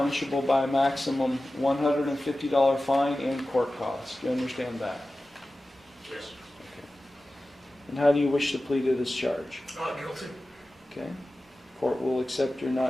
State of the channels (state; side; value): normal; both; correlation 0.95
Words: by a maximum $150 fine and court costs. Do you understand that? Yes. Okay. And how do you wish to plead to this charge? Not guilty. Okay. Court will accept your